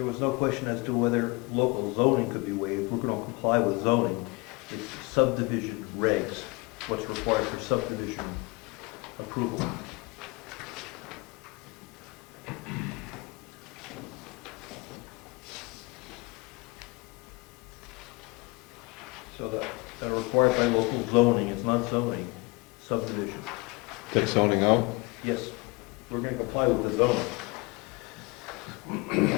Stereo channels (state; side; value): quieter; right; 26.0 dB